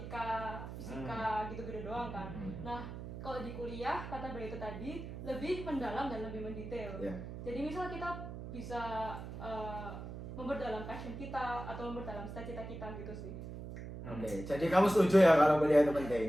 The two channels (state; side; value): noise; right; hum, 9 dB below the sound